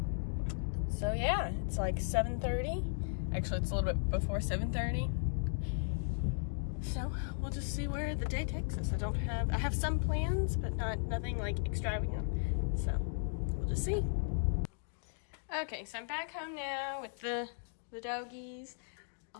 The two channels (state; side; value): silent; right; digital silence